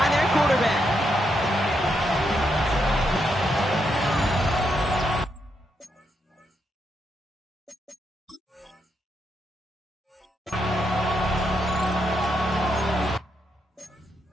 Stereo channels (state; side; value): normal; both; correlation 0.80